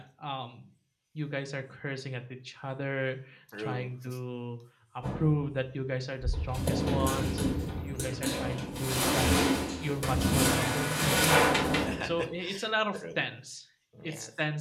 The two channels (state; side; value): identical; both; correlation 1.00